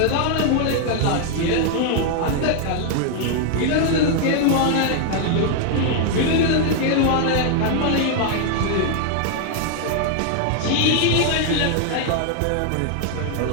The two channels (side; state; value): both; different; correlation 0.00